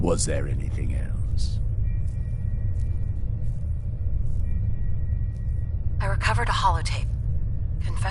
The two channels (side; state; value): both; identical; correlation 1.00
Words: there anything else? I recovered a holotape.